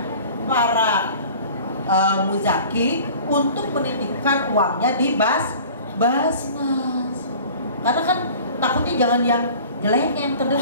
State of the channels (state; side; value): inverted; both; correlation -0.45